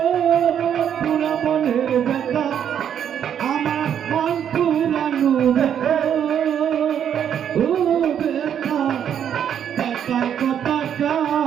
পুরা মনের ব্যথা আমার মন পুরানো ব্যথা ও ব্যথা ব্যথা কথা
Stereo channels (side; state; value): left; quieter; 9.0 dB